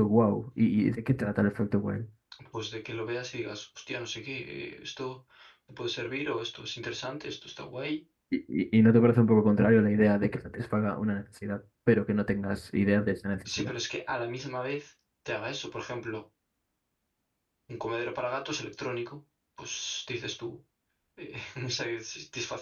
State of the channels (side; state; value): both; identical; correlation 1.00